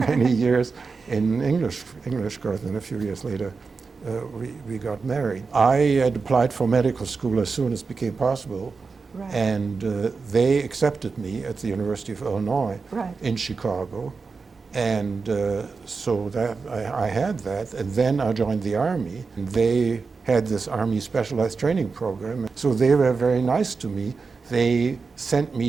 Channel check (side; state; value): left; quieter; 4.6 dB